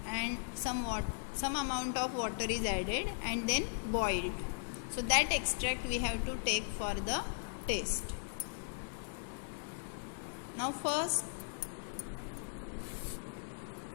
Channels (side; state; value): right; silent; 53 dB below the other